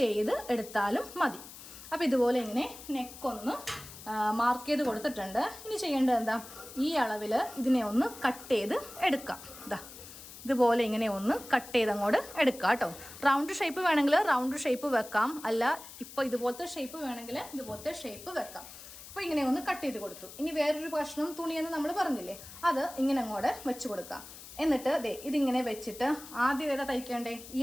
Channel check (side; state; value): left; noise; hiss, 15 dB below the sound